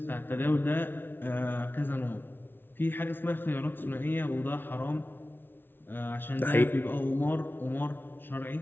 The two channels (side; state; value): right; late; 0.10 ms